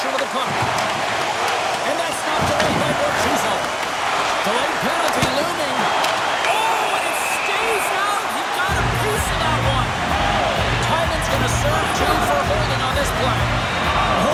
of the puck. And that's not delayed by Borchuzzo. Delayed penalty looming. Oh, and it stays out. He got a piece of that one. Tynan's going to serve two for holding on this play.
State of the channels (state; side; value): identical; both; correlation 1.00